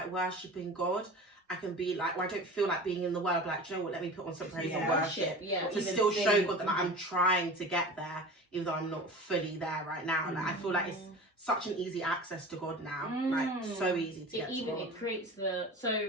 worshipping God, I can be like, or I don't feel like being in the word. Like, do you know what? Let me put on some praise and Yeah. worship Yeah. to even still show sing. God that like, I'm trying to get there, even though I'm not fully there right now. Like I feel like it's such an easy access to God now. Like so easy to get to God. It creates the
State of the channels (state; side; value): normal; both; correlation 0.35